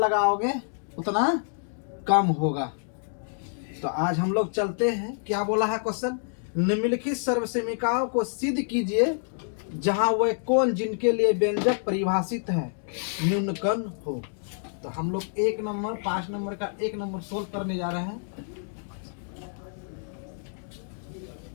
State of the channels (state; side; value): silent; right; digital silence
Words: उतना कम होगा। तो आज हम लोग चलते हैं। क्या बोला है क्वेश्चन? निम्नलिखित सर्वसमीकाओं को सिद्ध कीजिए जहां वह कोण जिनके लिए व्यंजक परिभाषित है न्यूनकर्ण हो। तो हम लोग 1 नंबर 5 नंबर का 1 नंबर सोल्व करने जा रहे हैं।